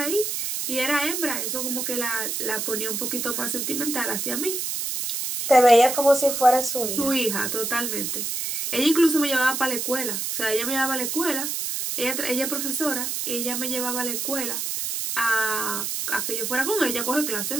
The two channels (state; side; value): noise; right; hiss, 2 dB below the sound